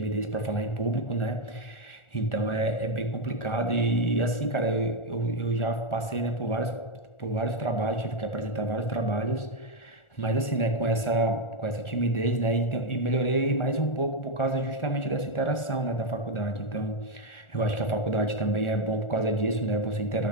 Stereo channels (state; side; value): late; right; 1.4 ms